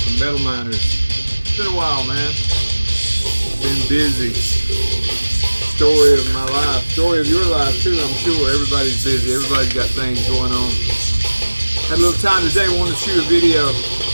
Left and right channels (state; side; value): inverted; both; correlation -1.00